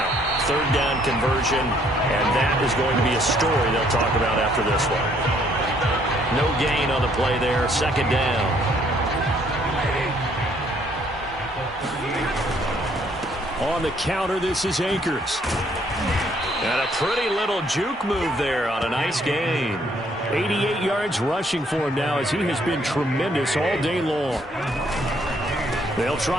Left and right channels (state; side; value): normal; both; correlation 0.66